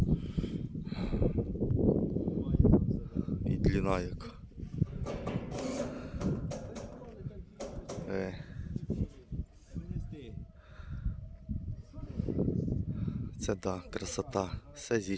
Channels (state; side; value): identical; both; correlation 1.00